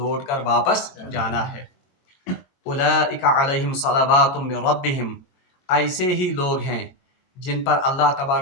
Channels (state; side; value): late; right; 23 ms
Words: کر واپس جانا ہے. اولئک علیہم صلوات من ربہم ایسے ہی لوگ ہیں جن پر اللہ